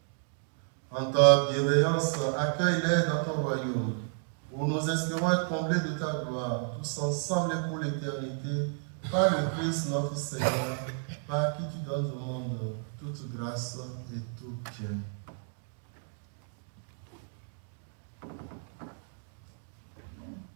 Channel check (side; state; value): left; silent; 57 dB below the other